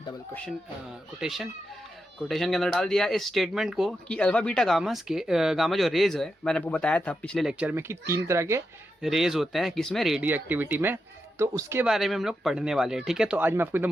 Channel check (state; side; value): normal; both; correlation 0.87